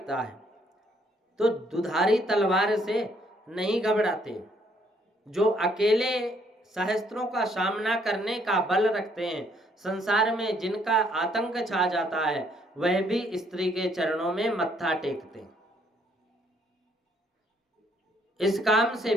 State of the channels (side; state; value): both; normal; correlation 0.68